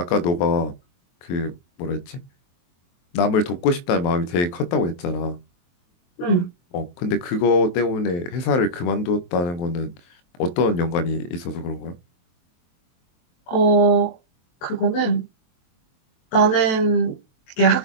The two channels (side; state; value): right; late; 23 ms